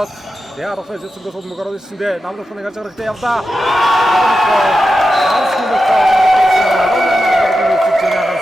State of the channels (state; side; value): normal; both; correlation 0.90